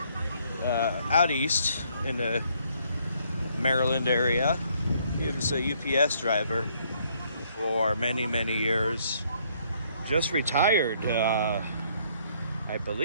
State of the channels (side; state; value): both; inverted; correlation -0.67